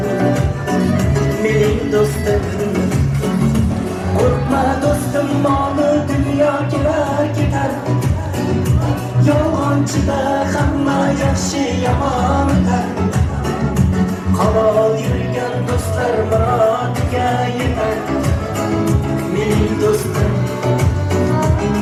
mening do'stim. Korkma dostum, molu dünya kelar ketar. Yolg'onchida hamma yaxshi yomon o'tar. Halol yurgan do'stlar murodiga yetar. Mening do'stim,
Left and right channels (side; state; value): both; identical; correlation 1.00